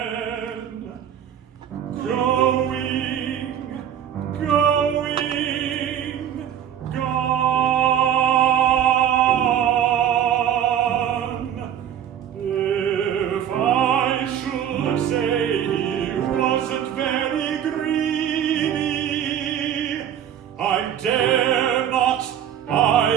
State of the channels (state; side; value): quieter; left; 9.7 dB